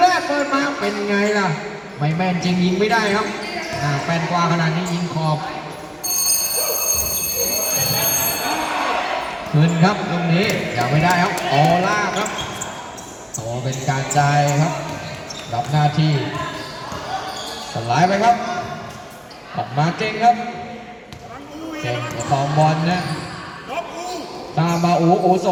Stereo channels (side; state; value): both; identical; correlation 1.00